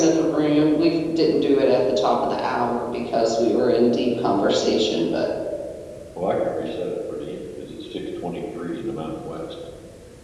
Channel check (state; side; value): identical; both; correlation 1.00